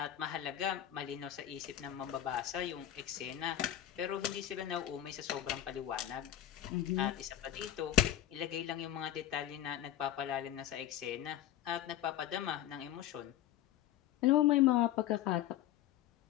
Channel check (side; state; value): right; quieter; 12.2 dB